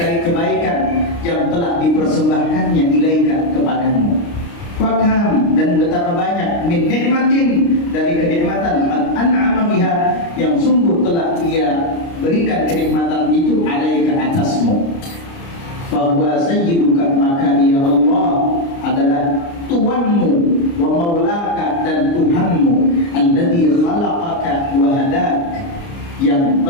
kebaikan yang telah dipersembahkannya ilaika, kepadamu. Fakam, dan betapa banyak min nikmatin, dari kenikmatan an'ama biha, yang sungguh telah Dia berikan kenikmatan itu alaika, atasmu. Bahwa sayyiduka, maka Dia Allah adalah Tuhanmu, wa maulaka, dan Tuhanmu, alladzi khalaqaka wa hadak, yang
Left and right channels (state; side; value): late; right; 29 ms